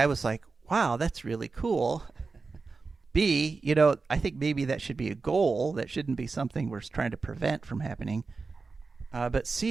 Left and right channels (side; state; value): left; quieter; 4.3 dB